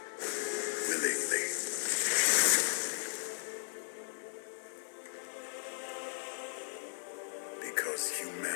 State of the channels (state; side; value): silent; right; digital silence